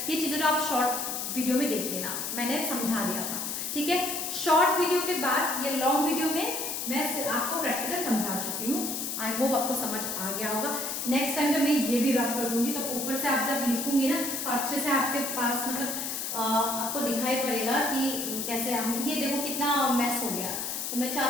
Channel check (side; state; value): left; noise; hiss, 3 dB below the sound